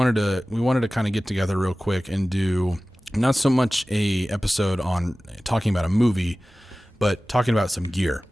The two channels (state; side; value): normal; both; correlation 0.97